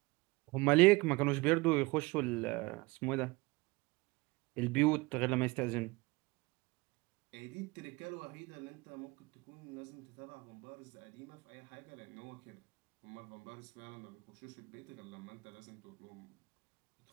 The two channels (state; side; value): quieter; left; 23.6 dB